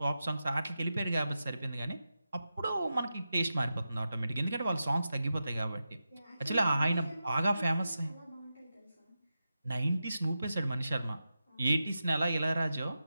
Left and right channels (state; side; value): inverted; both; correlation -0.90